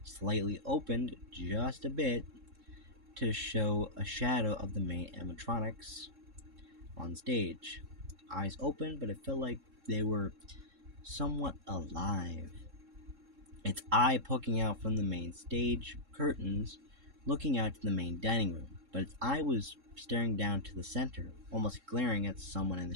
slightly opened just a bit to show a shadow of the main animatronics on stage. Eyes open, but it felt like they were somewhat alive. Its eye poking out from the main stage curtains, looking out to the main dining room, but its eye was staring down to the center, almost glaring at someone in the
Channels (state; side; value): late; left; 3.7 ms